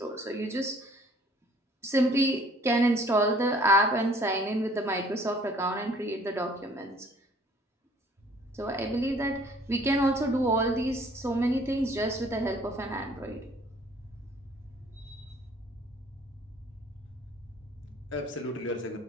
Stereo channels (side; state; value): both; normal; correlation 0.56